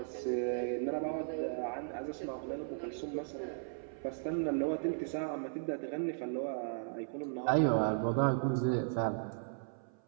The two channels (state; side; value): silent; left; 54 dB below the other